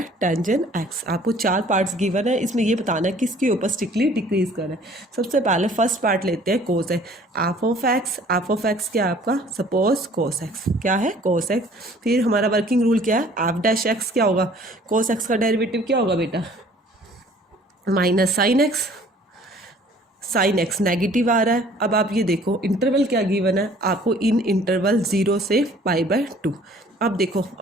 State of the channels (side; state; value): both; normal; correlation 0.54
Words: टेंजेंट x। आपको 4 पार्ट्स गिवन है, इसमें ये बताना है किसके ऊपर स्ट्रिक्टली डिक्रीज कर रहा है। सबसे पहले फर्स्ट पार्ट लेते हैं cos है, एफ ऑफ एक्स क्या है आपका, सपोज cos x क्या है cos x। फिर हमारा वर्किंग रूल क्या है, f'(x) क्या होगा, cos x का डेरिवेटिव क्या होगा बेटा sin x नेगेटिव आ रहा है। अब आप ये देखो इंटरवल क्या गिवन है आपको, इन इंटरवल 0 से π/2। अब देखो